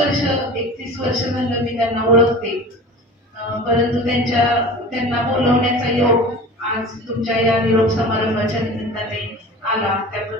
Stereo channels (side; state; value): both; normal; correlation 0.37